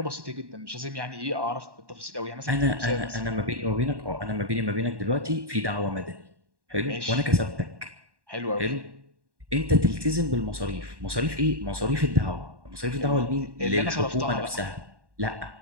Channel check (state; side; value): late; left; 1.1 ms